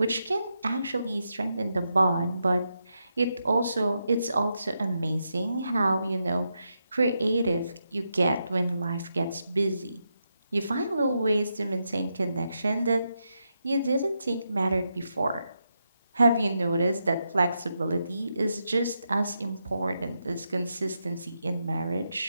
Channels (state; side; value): inverted; both; correlation -0.84